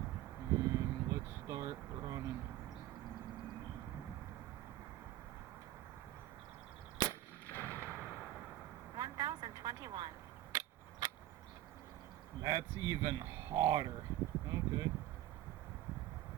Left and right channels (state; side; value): quieter; left; 14.2 dB